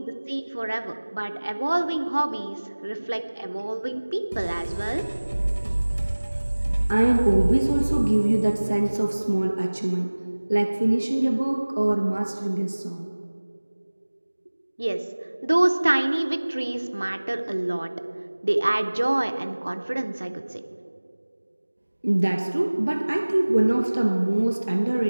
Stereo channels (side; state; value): both; inverted; correlation -1.00